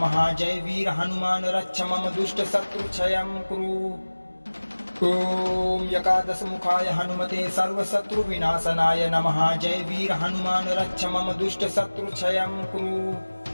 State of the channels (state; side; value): inverted; both; correlation -1.00